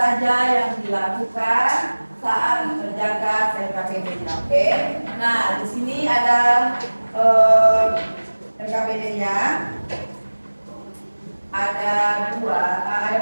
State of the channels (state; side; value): inverted; both; correlation -1.00